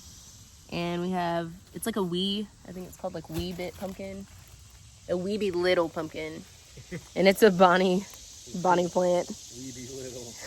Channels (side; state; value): both; identical; correlation 1.00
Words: And we have, it's like a I think it's called like wee bit pumpkin. A weeby little pumpkin. And it's a Bonnie plant. Weeby little.